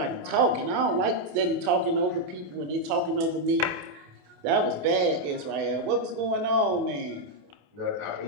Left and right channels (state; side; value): late; left; 28 ms